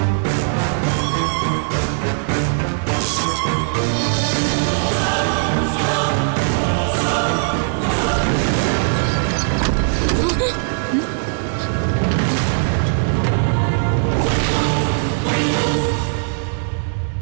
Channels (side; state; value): left; silent; digital silence